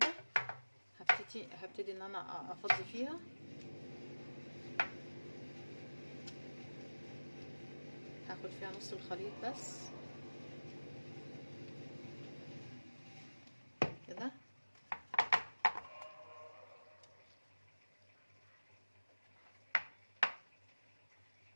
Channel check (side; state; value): both; inverted; correlation -1.00